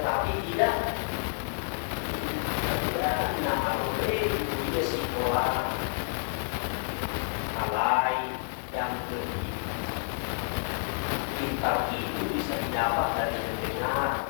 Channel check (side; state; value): right; silent; 58 dB below the other